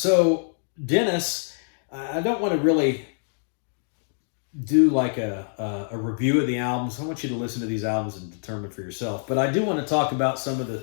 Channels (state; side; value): silent; right; digital silence